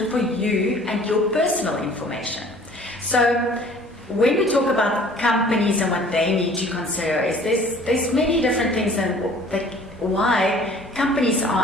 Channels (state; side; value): normal; both; correlation 0.51